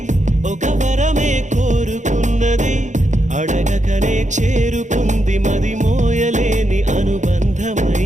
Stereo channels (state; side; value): late; left; 0.35 ms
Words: ఒక వరమే కోరుకున్నది అడగకనే చేరుకుంది మది మోయలేని